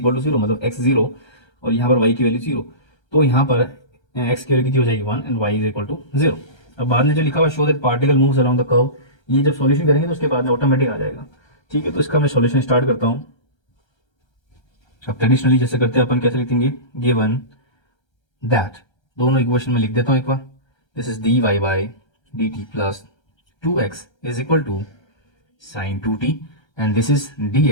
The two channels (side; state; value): right; late; 1.3 ms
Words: टू 0 मतलब x 0 और यहाँ पर y की वैल्यू 0। तो यहाँ पर x की वैल्यू कितनी हो जाएगी 1 and y is equal to 0। अब बाद में जो लिखा हुआ show that particle moves around the curve, ये जब सॉल्यूशन करेंगे तो उसके बाद में ऑटोमेटिक आ जाएगा। ठीक है, तो इसका मैं सॉल्यूशन स्टार्ट करता हूँ। अब ट्रेडिशनली जैसे करते हैं अपन, कैसे लिखेंगे, गिवन दैट, दोनों इक्वेशन में लिख देता हूँ एक बार। This is dy by dt plus 2x is equal to sin 2t and this is